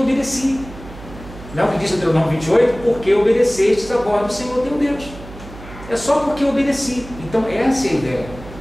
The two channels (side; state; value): right; noise; hum, 16 dB below the sound